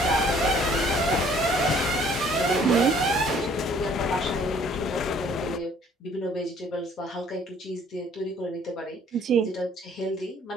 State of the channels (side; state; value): both; normal; correlation 0.58